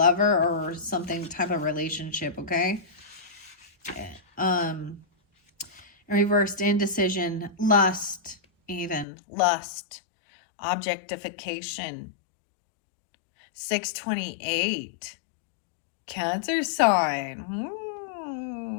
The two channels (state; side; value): drops out; right; at 9.1 s